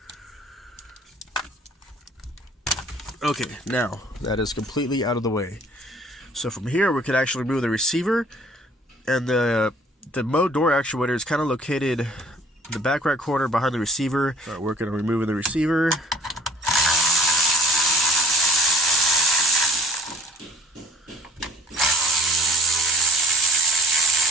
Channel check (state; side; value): normal; both; correlation 0.53